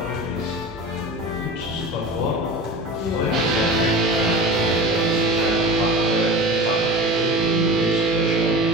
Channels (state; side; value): normal; both; correlation 0.33